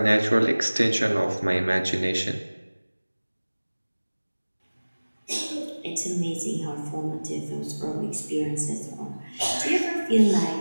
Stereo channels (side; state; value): both; inverted; correlation -1.00